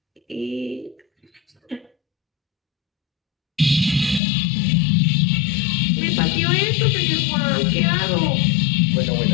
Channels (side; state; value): right; drops out; at 4.2 s